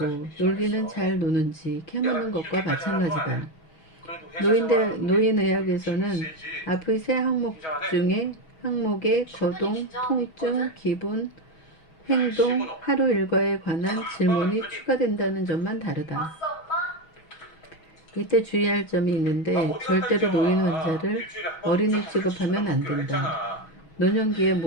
놀기는 잘 노는지 캐묻는 것과 마찬가지다. 노인의학에서는 앞의 세 항목 중에 항목에 거동, 통증, 기분, 행동, 하루 일과에 관한 질문이 추가된다는 점만 다르다. 이때 주의할 점이 있는데 절대로 노인 환자를 어린이 취급하면 안 된다. 노년기의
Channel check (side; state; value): right; late; 6.2 ms